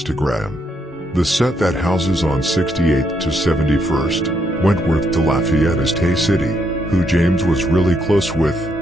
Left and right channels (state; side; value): normal; both; correlation 0.75